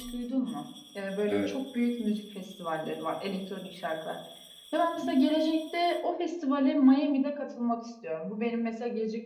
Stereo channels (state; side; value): identical; both; correlation 1.00